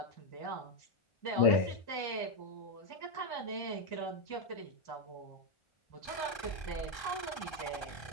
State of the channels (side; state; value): right; late; 1.3 ms